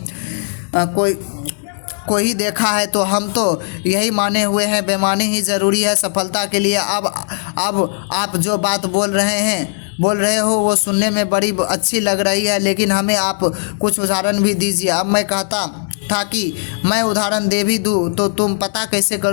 कोई ही देखा है, तो हम तो यही माने हुए हैं बेईमानी ही ज़रूरी है सफलता के लिए। अब आप जो बात बोल रहे हो वो सुनने में बड़ी अच्छी लग रही है, लेकिन हमें आप कुछ उदाहरण भी दीजिए। अब मैं कहता था कि मैं उदाहरण दे भी दूँ तो तुम पता कैसे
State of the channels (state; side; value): silent; right; digital silence